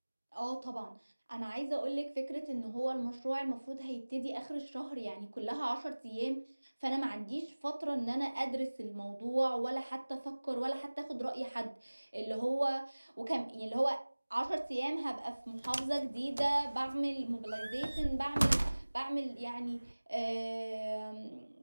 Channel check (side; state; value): both; inverted; correlation -1.00